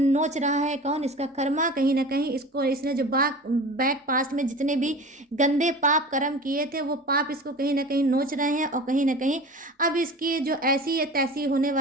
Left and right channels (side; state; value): both; normal; correlation 0.37